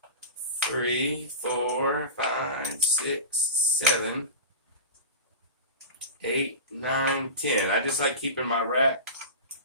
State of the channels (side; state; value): both; inverted; correlation -0.31